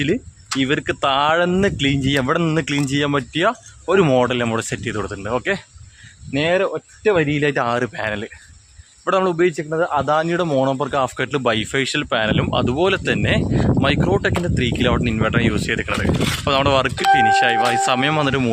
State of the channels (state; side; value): identical; both; correlation 1.00